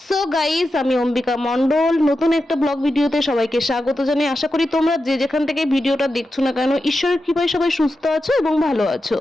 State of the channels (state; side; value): normal; both; correlation 0.90